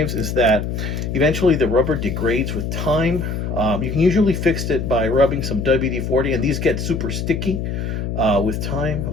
is that eventually the rubber degrades with time. You can usually fix it by rubbing some WD-40, and these get super sticky with time.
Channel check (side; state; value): left; noise; hum, 3 dB below the sound